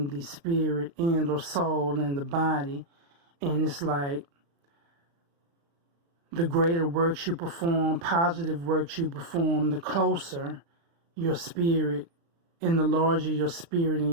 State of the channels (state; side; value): late; left; 36 ms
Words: the spirit and or soul and the body. And it's like the greater works you perform, positive works you perform, the closer your spirit And the larger your spirit and